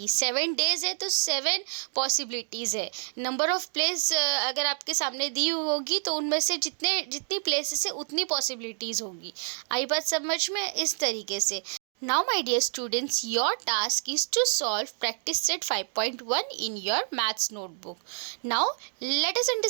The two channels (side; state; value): left; silent; 59 dB below the other